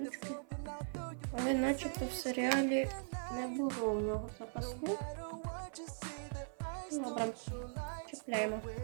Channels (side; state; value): left; silent; 51 dB below the other